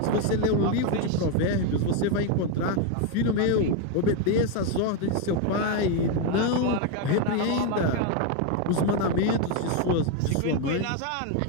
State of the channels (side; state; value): both; different; correlation 0.02